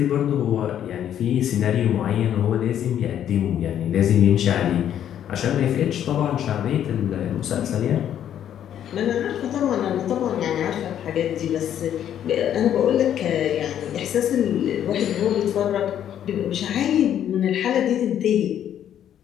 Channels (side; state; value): right; quieter; 10.2 dB